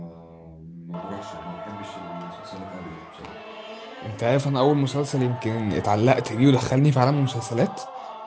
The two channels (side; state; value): both; identical; correlation 1.00